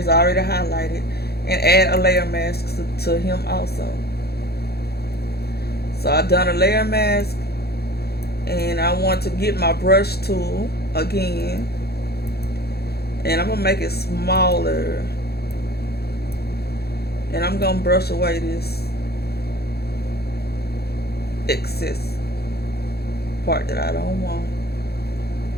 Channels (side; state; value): right; late; 0.46 ms